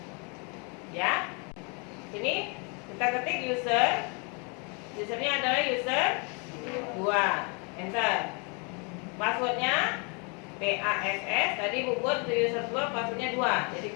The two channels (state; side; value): quieter; right; 33.6 dB